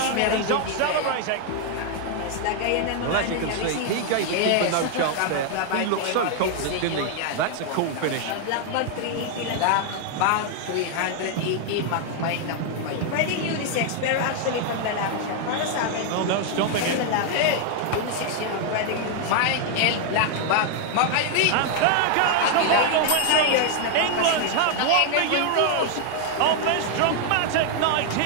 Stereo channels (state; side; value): different; both; correlation 0.00